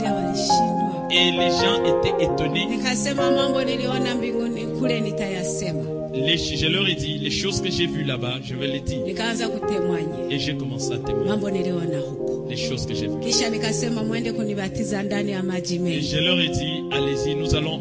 walishindwa. Et les gens étaient étonnés. Nikasema mambo niliona mbinguni kule nitayasema. Je leur ai dit, les choses que j'ai vues là-bas, je vais les dire. Nikaanza kutemwanya. Et j'ai commencé à témoigner. Mambo niliona huko. Les choses que j'ai vues. Kisha nikasema mwende kunibatiza ndani ya maji mengi. Et je leur ai dit, allez-y,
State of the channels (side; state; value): both; identical; correlation 1.00